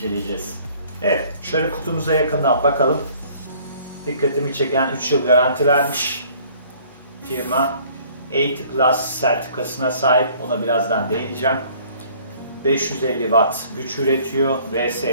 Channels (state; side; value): inverted; both; correlation -0.55